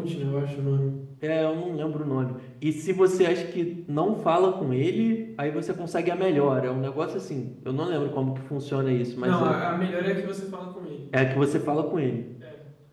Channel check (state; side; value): identical; both; correlation 1.00